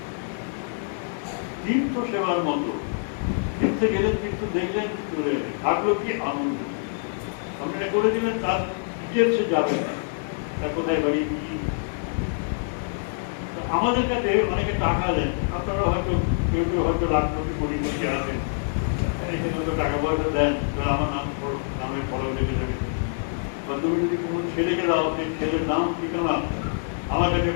তীর্থ সেবার মতো, তীর্থে গেলেন, তীর্থ দেখলেন, চলে গেলেন, থাকলো কি আনন্দ। আপনি এটা করে দিলেন, তার ডিটেলসে যাবেন না, তার কোথায় বাড়ি কি। আমাদের কাছে অনেকে টাকা দেন, আপনারা হয়তো কেউ কেউ হয়তো লাখপতি কোটিপতি আছেন, এখানে হয়তো টাকা পয়সা দেন, আমার নামের ফলো লেগে যাবে। বা তুমি যদি কোনো ছেলেকে দাও, সেই ছেলের নাম ঠিকানা আমার কাছে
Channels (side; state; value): right; silent; 61 dB below the other